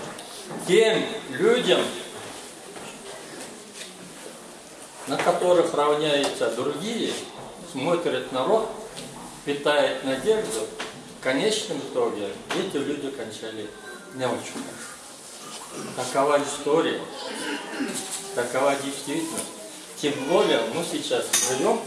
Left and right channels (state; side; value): identical; both; correlation 1.00